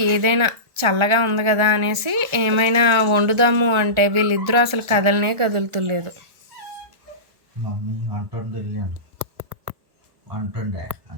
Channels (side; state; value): left; late; 1.4 ms